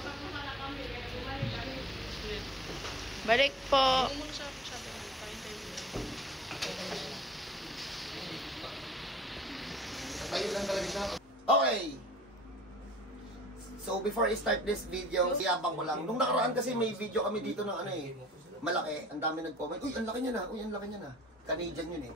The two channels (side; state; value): both; normal; correlation 0.49